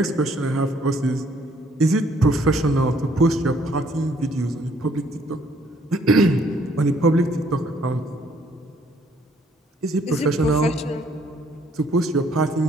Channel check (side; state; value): both; normal; correlation 0.64